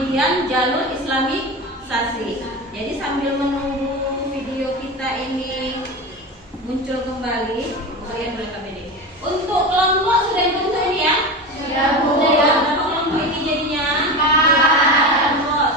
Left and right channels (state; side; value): normal; both; correlation 0.25